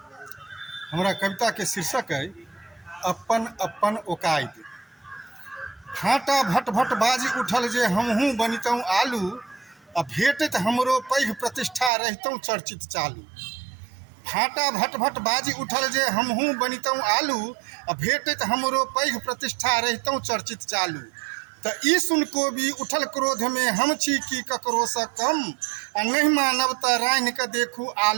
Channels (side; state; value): left; drops out; at 11.9 s